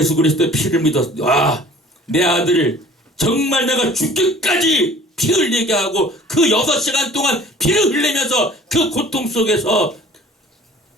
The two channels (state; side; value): normal; both; correlation 0.48